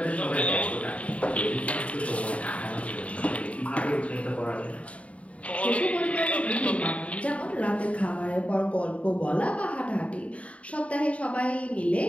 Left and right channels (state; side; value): late; right; 0.065 ms